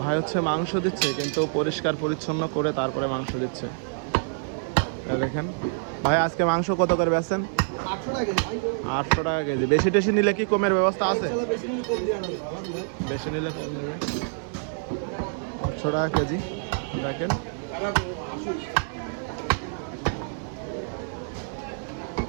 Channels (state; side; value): silent; left; digital silence